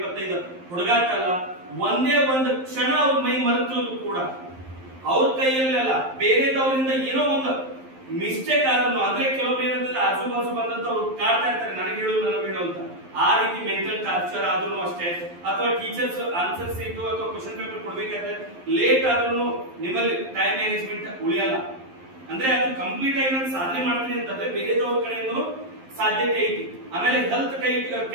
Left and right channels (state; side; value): late; left; 11 ms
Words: ಹುಡುಗಾಟಲ್ಲ. ಒಂದೇ ಒಂದು ಕ್ಷಣ ಅವ್ರ ಮೈ ಮರೆತರು ಕೂಡ ಅವ್ರ ಕೈಯಲ್ಲಿ ಅಲ್ಲ, ಬೇರೆದವರಿಂದ ಏನೋ ಒಂದು ಮಿಸ್ಟೇಕ್ ಆದ್ರೂ, ಅಂದ್ರೆ ಕೆಲವೊಬ್ರು ಏನಂತಂದ್ರೆ ಆಜು ಬಾಜು ಬಂದಂತ ಅವ್ರು ಕಾಡ್ತಾ ಇರ್ತಾರೆ, ನನಗೆ ಹೇಳು ನನಗೆ ಹೇಳು ಅಂತ. ಆ ರೀತಿ ಮೆಂಟಲ್ ಟಾರ್ಚರ್ ಆದ್ರೂ ಅಷ್ಟೇ, ಅಥವಾ ಟೀಚರ್ಸ್ ಆನ್ಸರ್ ಸೀಟು ಅಥವಾ ಕ್ವಶನ್ ಪೇಪರ್ ಕೊಡ್ಬೇಕಾದ್ರೆ ಲೇಟ್ ಆದ್ರೂ ನಿಮ್ಮಲ್ಲಿ ಟೈಮ್ ಮ್ಯಾನೇಜ್ಮೆಂಟ್ ಉಳಿಯಲ್ಲ. ಅಂದ್ರೆ ಅದು ಕಂಪ್ಲೀಟ್ ಆಗಿ ನಾನು ಸಾಧನೆ ಮಾಡ್ತೀನಿ ಅಂತಂದ್ರೆ ಬೇರೆದವ್ರ ಕಡೆಯಿಂದ ಸಾಧ್ಯತೆ ಐತಿ. ಆಮೇಲೆ ಹೆಲ್ತ್